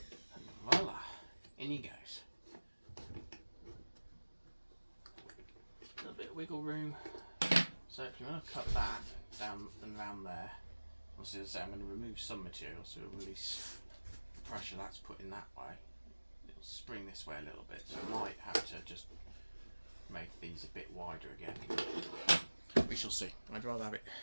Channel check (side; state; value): both; inverted; correlation -1.00